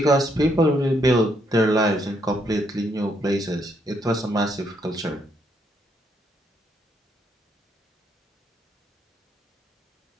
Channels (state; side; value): normal; both; correlation 0.74